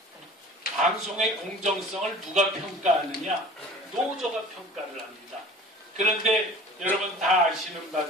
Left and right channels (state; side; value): normal; both; correlation 0.43